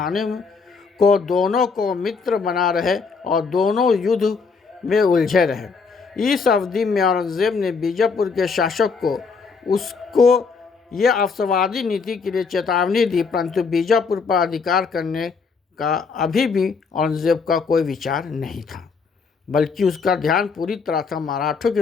को दोनों को मित्र बना रहे और दोनों युद्ध में उलझे रहे। इस अवधि में औरंगजेब ने बीजापुर के शासक को उसको यह अवसरवादी नीति के लिए चेतावनी दी, परंतु बीजापुर पर अधिकार करने का अभी भी औरंगजेब का कोई विचार नहीं था, बल्कि उसका ध्यान पूरी तरह से मराठों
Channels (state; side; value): quieter; right; 5.0 dB